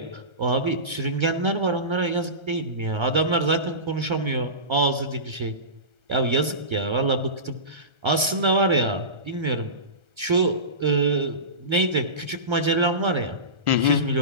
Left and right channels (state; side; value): late; left; 1.3 ms